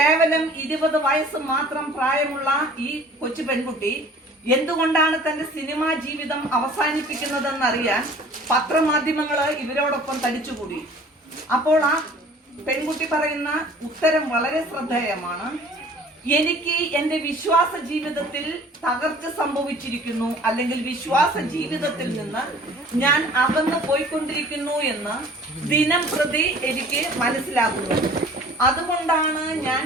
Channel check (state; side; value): normal; both; correlation 0.48